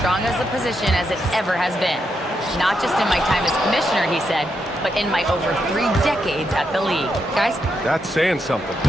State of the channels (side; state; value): both; normal; correlation 0.82